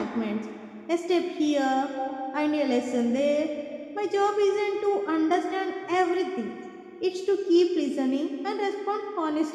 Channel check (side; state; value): both; identical; correlation 1.00